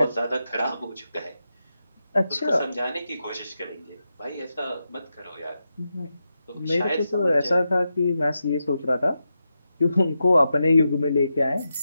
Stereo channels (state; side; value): inverted; both; correlation -0.87